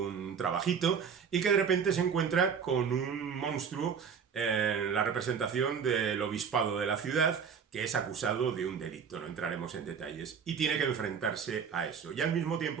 trabajito y que de repente se encuentra con un monstruo en la representación del obispado de la ciudad, que es acusado de un delito, no entraremos en detalles, y tiene que enfrentarse a eso. Y al mismo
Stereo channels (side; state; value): left; quieter; 6.7 dB